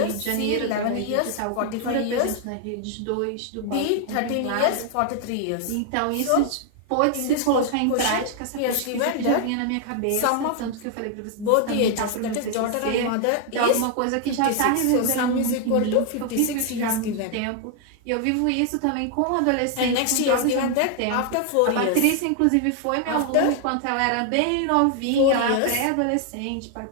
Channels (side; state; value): both; different; correlation 0.00